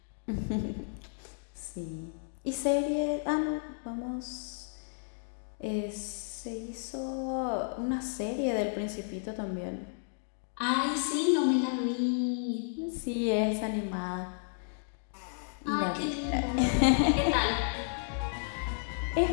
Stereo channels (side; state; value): right; silent; digital silence